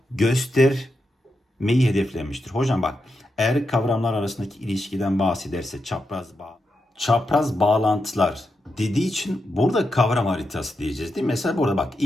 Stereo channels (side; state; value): both; normal; correlation 0.86